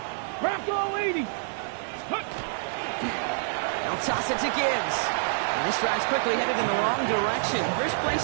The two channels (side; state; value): left; silent; digital silence